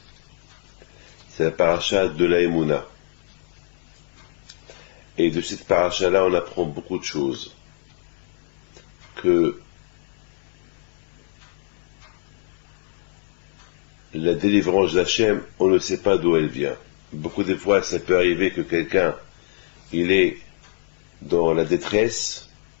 c'est la paracha de la Emouna. Et de cette paracha-là, on apprend beaucoup de choses. Que la délivrance d'Hachem, on ne sait pas d'où elle vient. Beaucoup de fois, ça peut arriver que quelqu'un, il est dans la détresse,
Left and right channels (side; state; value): right; silent; digital silence